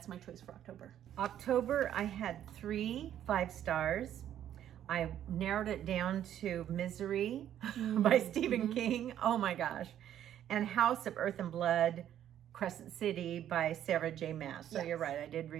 my choice for October. October, I had 3 5 stars. I narrowed it down to Misery by Stephen King. Oh my gosh. And House of Earth and Blood, Crescent City by Sarah J. Maas. So you're right, I did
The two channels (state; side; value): quieter; left; 10.9 dB